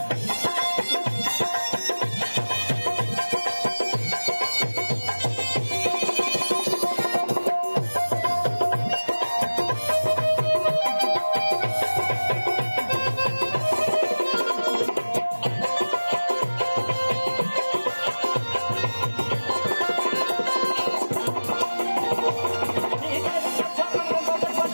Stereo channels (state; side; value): inverted; both; correlation -1.00